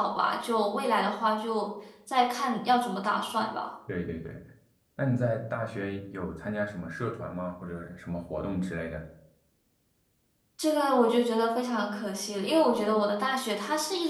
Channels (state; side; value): identical; both; correlation 1.00